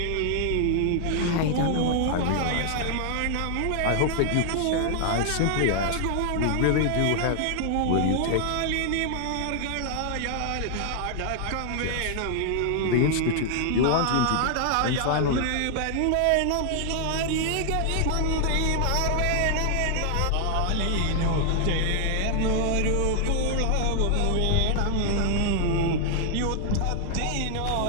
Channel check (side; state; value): both; different; correlation 0.00